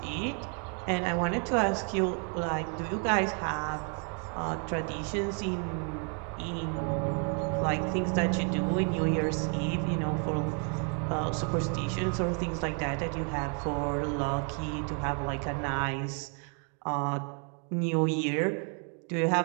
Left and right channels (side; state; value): left; quieter; 39.8 dB